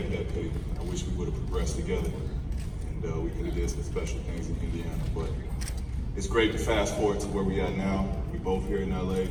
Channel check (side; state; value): both; identical; correlation 1.00